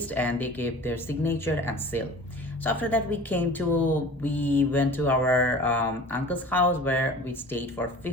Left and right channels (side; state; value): both; normal; correlation 0.41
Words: and they gave their signature and seal. So after that, we went to our uncle's house where we stayed for